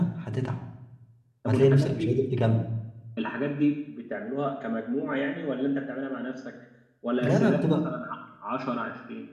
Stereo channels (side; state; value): both; identical; correlation 1.00